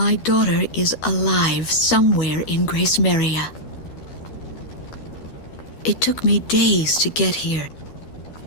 daughter is alive somewhere in Grace Maria. It took me days to get here.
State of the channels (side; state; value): right; late; 12 ms